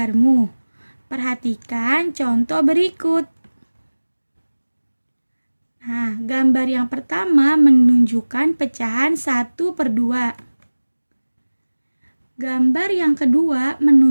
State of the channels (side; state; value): both; inverted; correlation -1.00